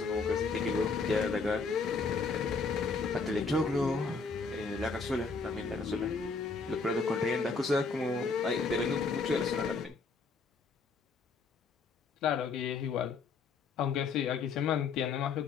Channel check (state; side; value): quieter; right; 4.5 dB